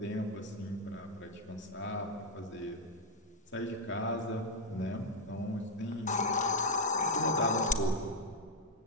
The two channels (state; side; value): normal; both; correlation 0.02